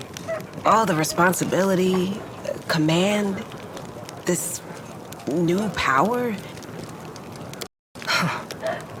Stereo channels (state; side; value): identical; both; correlation 1.00